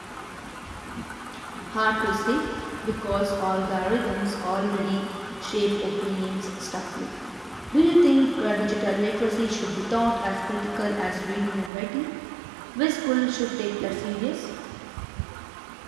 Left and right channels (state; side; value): drops out; left; at 11.7 s